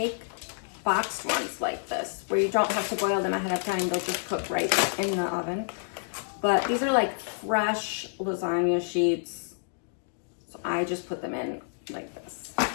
boxed ones like this, where you don't have to boil them ahead of time. They'll just cook right in the oven. But these are like fresh lasagna sheets. So I just put them in like this.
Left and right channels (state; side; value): silent; right; digital silence